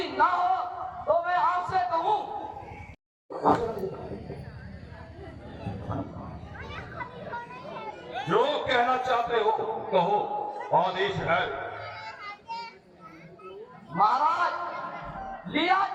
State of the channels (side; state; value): both; identical; correlation 1.00